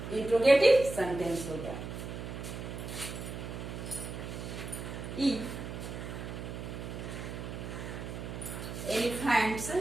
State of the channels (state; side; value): noise; right; hum, 7 dB below the sound